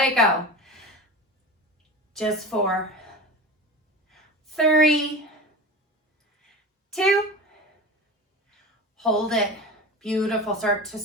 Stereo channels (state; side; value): normal; both; correlation 0.30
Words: it go. Just 4, 3, 2. Hold it. Beautiful. Start to